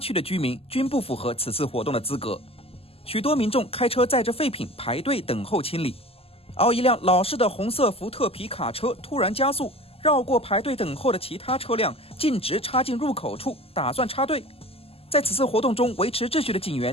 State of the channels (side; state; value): right; late; 0.28 ms